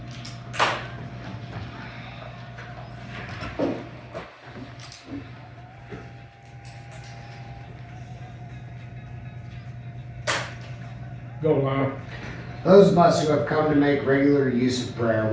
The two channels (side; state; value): both; identical; correlation 1.00